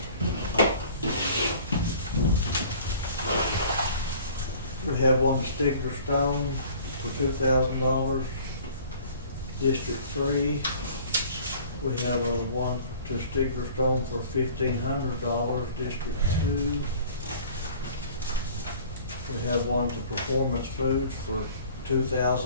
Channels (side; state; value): both; inverted; correlation -0.49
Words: We have one to Stigler Stone for $2,000, District 3. We have one to Stigler Stone for $1,500, District 2. We have one to Performance Foods for